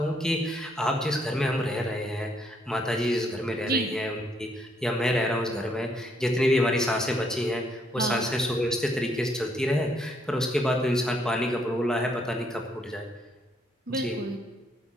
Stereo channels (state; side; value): normal; both; correlation 0.71